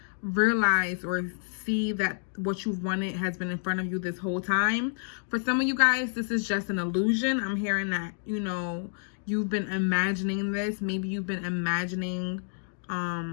realize or see that what you've wanted has been in front of you this whole time. For some of you guys, this is just an illusion. I'm hearing that, you know, you've been imagining this. Maybe you've been imagining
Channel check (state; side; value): silent; right; digital silence